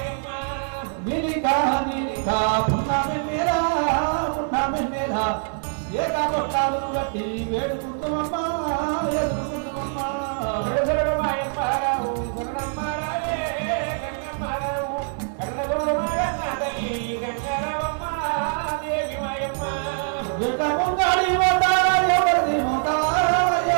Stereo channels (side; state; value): left; silent; digital silence